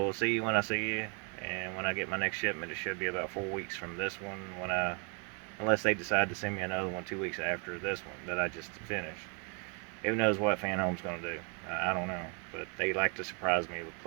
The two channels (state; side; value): quieter; left; 34.5 dB